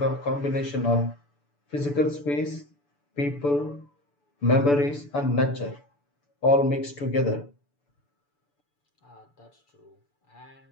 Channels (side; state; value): right; late; 6.9 ms